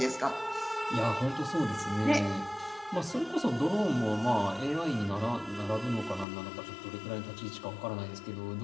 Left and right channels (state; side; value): drops out; right; at 6.2 s